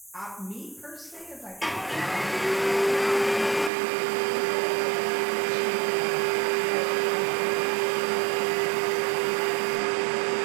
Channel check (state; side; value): drops out; left; at 3.7 s